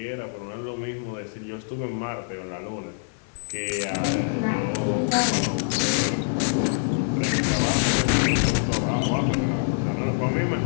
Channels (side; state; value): right; silent; digital silence